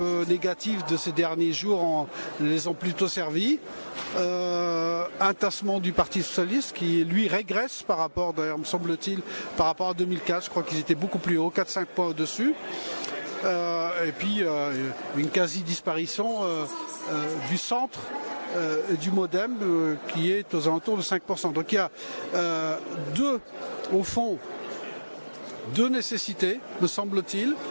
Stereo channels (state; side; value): inverted; both; correlation -1.00